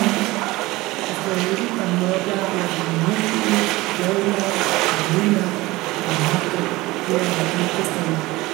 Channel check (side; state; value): left; quieter; 20.1 dB